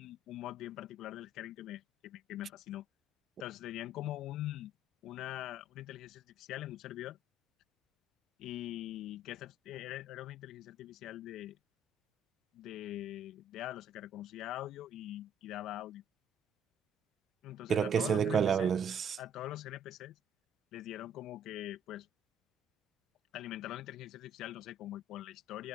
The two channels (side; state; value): both; normal; correlation 0.60